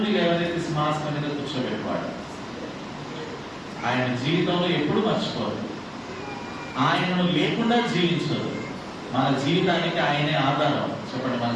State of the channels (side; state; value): both; identical; correlation 1.00